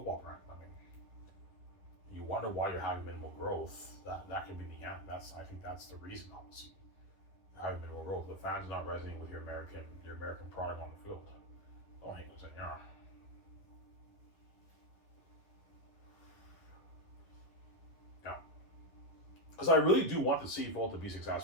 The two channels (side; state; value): right; late; 11 ms